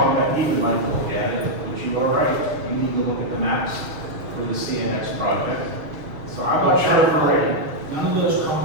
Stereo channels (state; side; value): late; left; 6.9 ms